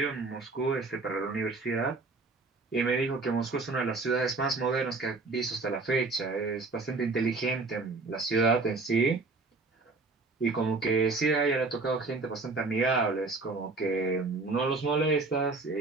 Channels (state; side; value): quieter; left; 3.7 dB